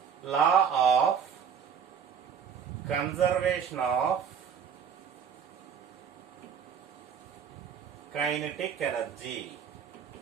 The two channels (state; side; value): quieter; left; 7.3 dB